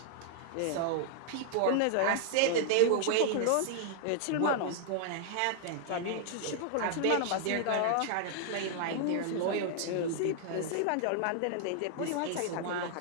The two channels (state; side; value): different; both; correlation -0.01